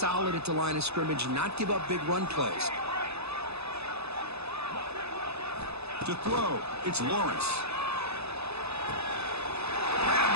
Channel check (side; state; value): left; late; 0.79 ms